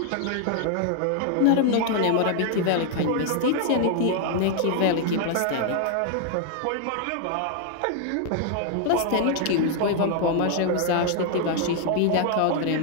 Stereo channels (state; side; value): different; both; correlation 0.00